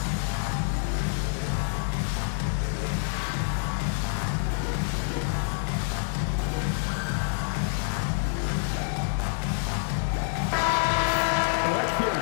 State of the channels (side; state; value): right; silent; digital silence